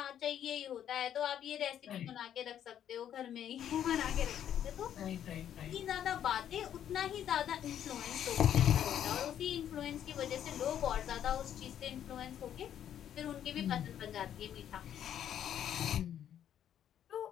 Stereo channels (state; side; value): quieter; right; 10.1 dB